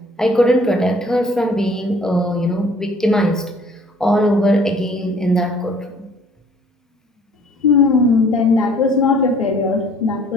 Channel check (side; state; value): both; normal; correlation 0.55